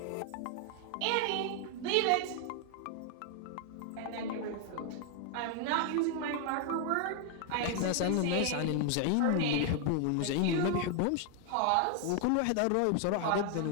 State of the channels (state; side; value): different; both; correlation 0.00